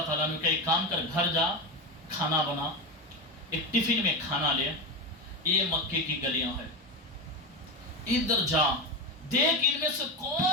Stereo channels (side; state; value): both; normal; correlation 0.17